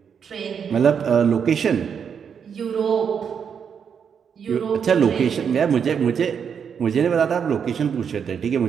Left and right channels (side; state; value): left; quieter; 7.2 dB